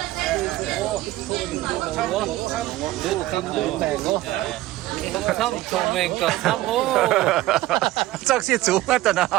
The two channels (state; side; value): quieter; left; 16.5 dB